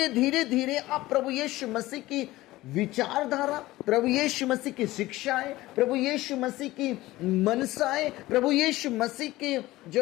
धीरे धीरे आप प्रभु यीशु मसीह की विचारधारा, प्रभु यीशु मसीह की शिक्षाएं, प्रभु यीशु मसीह की मनसाएं, प्रभु यीशु मसीह के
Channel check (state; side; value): quieter; right; 17.7 dB